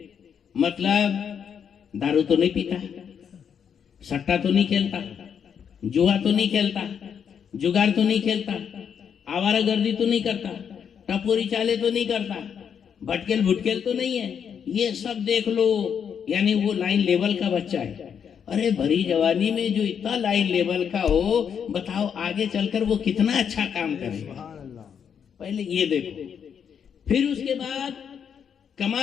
مطلب دارو تو نہیں پیتا، سٹا تو نہیں کھیلتا، جوا تو نہیں کھیلتا، جگار تو نہیں کھیلتا، آوارہ گردی تو نہیں کرتا، ٹپوری چالے تو نہیں کرتا، بھٹکل بھٹکل تو نہیں ہے. یہ سب دیکھ لو، یعنی وہ لائن لیول کا بچہ ہے. ارے بھری جوانی میں جو اتنا لائن لیول کا ہو، بتاؤ آگے چل کر وہ کتنا اچھا کام کرے گا. پہلے یہ دیکھو. پھر اس کے بعد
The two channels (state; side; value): quieter; right; 7.6 dB